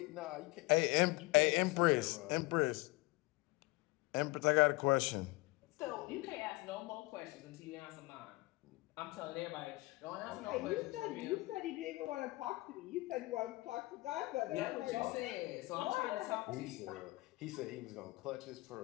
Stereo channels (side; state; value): right; quieter; 22.4 dB